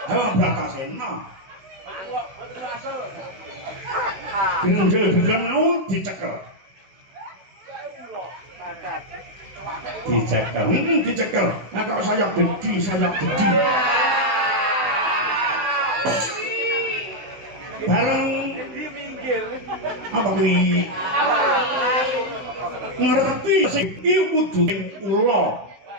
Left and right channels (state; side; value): late; left; 16 ms